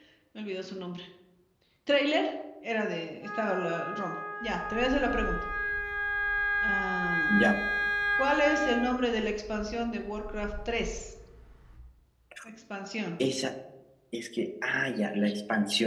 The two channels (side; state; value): both; identical; correlation 1.00